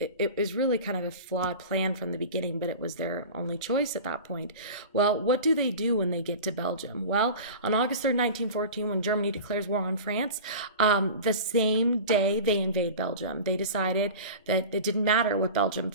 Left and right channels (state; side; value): inverted; both; correlation -0.34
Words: kind of a flawed plan from the beginning, but it was their only choice at that point. Well, what do they do when they get to Belgium? Well, on August 3rd, 1914, when Germany declares war on France, the same day they invade Belgium. They decided that it didn't matter what Belgium